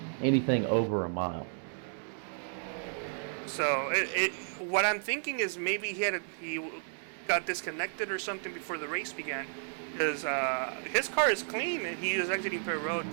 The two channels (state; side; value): silent; left; digital silence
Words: anything over a mile. So what I'm thinking is maybe he got disconnected or something before the race began, because his car is clean and he is exiting pit road.